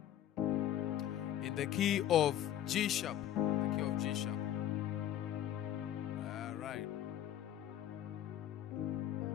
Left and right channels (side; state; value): right; quieter; 11.6 dB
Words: G sharp. The key of G sharp. Alright.